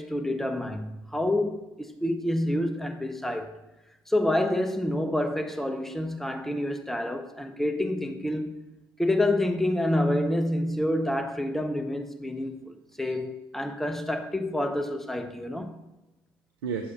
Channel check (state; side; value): normal; both; correlation 0.89